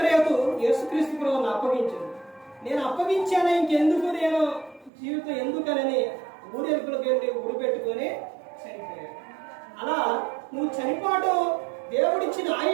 యేసుక్రీస్తు ప్రభువుని అప్పగించింది. నేను అప్పగించాను, ఇంకెందుకు నేను జీవితం ఎందుకనని ఊరేపులకు వెళ్ళి ఉడిపెట్టుకొని చనిపోయాడు. అలా నువ్వు చనిపోవడం, దేవుడిచ్చిన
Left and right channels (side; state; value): left; drops out; at 4.9 s